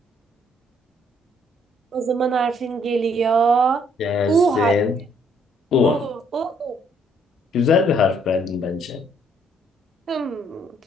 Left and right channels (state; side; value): normal; both; correlation 0.67